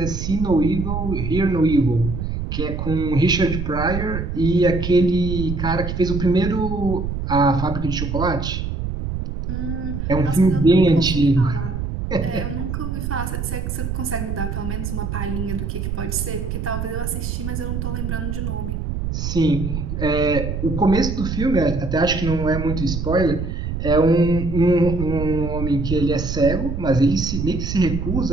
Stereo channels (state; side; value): noise; right; rumble, 4 dB below the sound